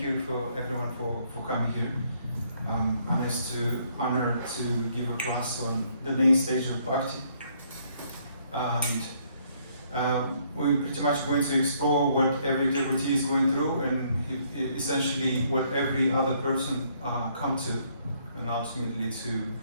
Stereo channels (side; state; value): both; inverted; correlation -0.67